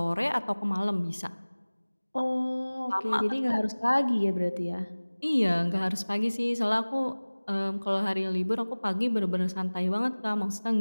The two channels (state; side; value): inverted; both; correlation -1.00